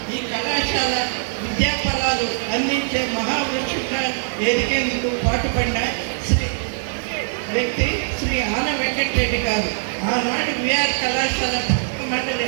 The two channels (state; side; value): silent; left; digital silence